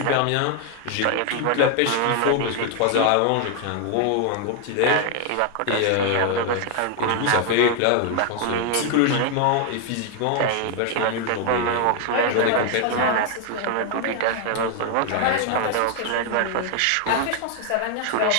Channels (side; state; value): both; different; correlation 0.00